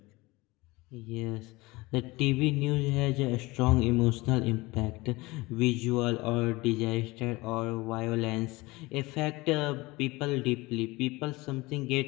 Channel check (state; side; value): quieter; right; 22.0 dB